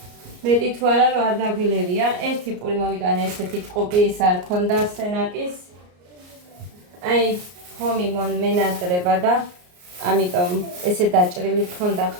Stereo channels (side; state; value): left; late; 34 ms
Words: მეტი თუ არა რომ არ დაგვილებია. ერთი პური მოვიტანე ესეთი ტყუპი, ის არ ქონდა სენაკის. აი ხომი მონმენატრება და ამიტომ ესე დაჭრილი ქონდა